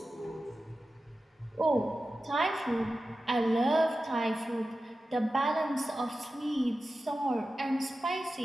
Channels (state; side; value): normal; both; correlation 0.93